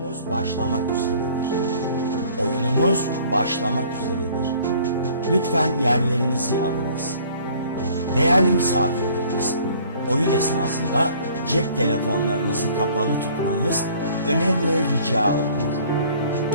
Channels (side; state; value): both; inverted; correlation -0.54